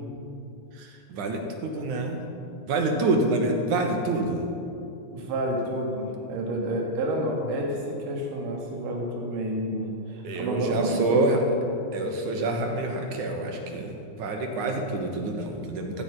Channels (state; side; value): late; left; 9.7 ms